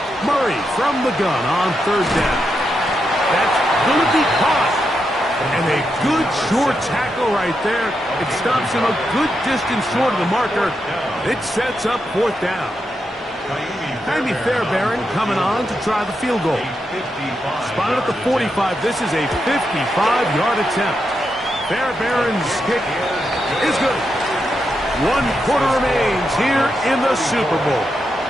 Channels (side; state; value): both; normal; correlation 0.84